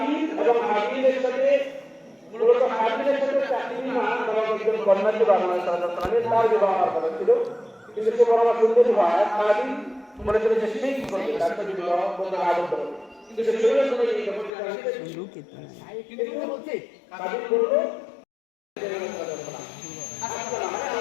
এবং হাবিলের সাথে মূলত হাবিলের সাথে তাকলিমা নামক একজন কন্যাকে বাংলাদেশ সরকার তার বিবাহ করেছিল, কিন্তু সে বড় সুন্দরী হয় কাবিল মনে করে যে সেই কি করবে তার সাথে বিবাহ করতে আবদ্ধ হবে, কিন্তু সে শরীরের কোনো এই কিন্তু বলছে কাবিল বলল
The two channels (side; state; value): right; drops out; at 14.5 s